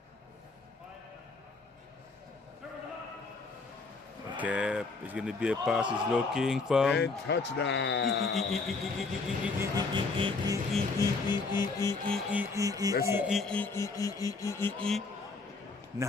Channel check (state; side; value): quieter; right; 4.0 dB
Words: Okay, it's going to be a pass. He's looking for... And touchdown.